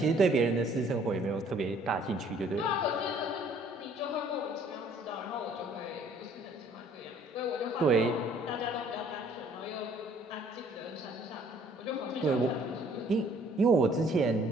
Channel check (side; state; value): both; normal; correlation 0.59